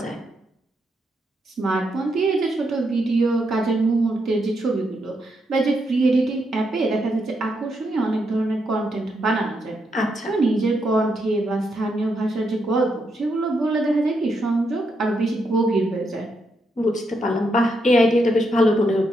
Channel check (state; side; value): normal; both; correlation 0.80